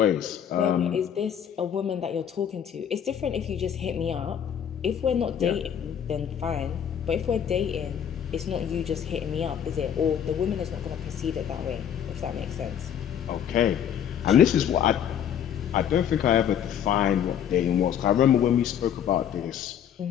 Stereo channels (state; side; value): quieter; right; 9.0 dB